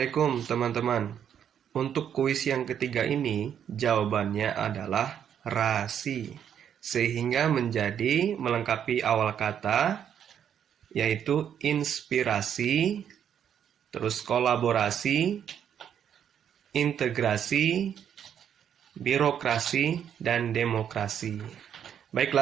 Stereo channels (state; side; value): quieter; left; 8.9 dB